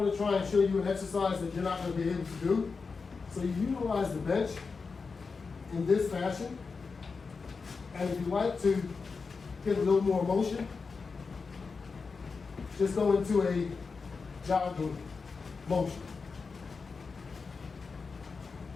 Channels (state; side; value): quieter; right; 4.8 dB